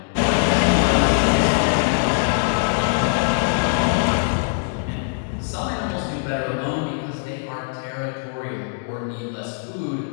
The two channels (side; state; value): right; silent; 64 dB below the other